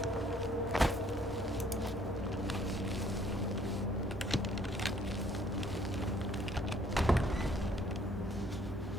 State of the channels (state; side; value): normal; both; correlation 0.62